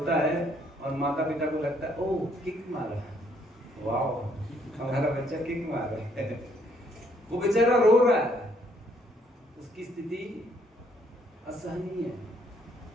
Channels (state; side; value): normal; both; correlation 0.68